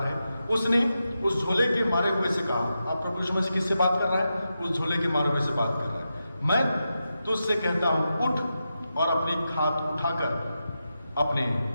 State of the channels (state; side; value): inverted; both; correlation -0.89